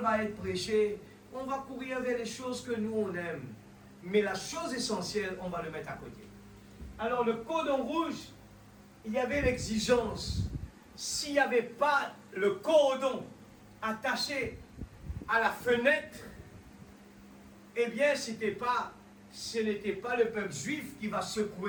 va être prêchée, on va courir vers les choses que nous on aime. Mais la chose essentielle, on va le mettre à côté. Alors le cordon rouge, il y avait l'exigence. S'il n'y avait pas le cordon attaché à la fenêtre, eh bien, ce n'était pas le peuple juif qui va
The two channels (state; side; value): identical; both; correlation 1.00